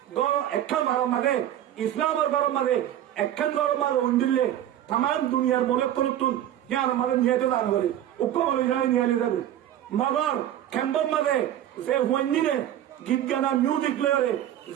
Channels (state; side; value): quieter; left; 11.7 dB